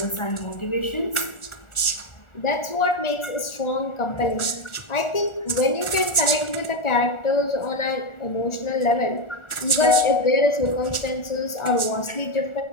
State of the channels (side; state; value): right; late; 1.4 ms